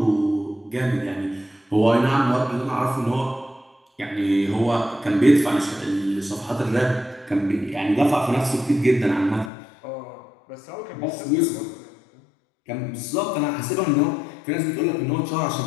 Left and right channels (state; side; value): drops out; right; at 9.5 s